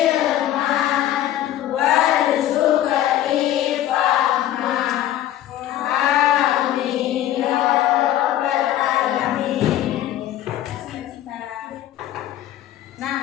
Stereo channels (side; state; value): right; quieter; 12.6 dB